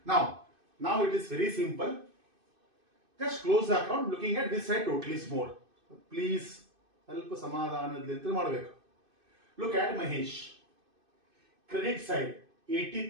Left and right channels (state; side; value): late; left; 2.5 ms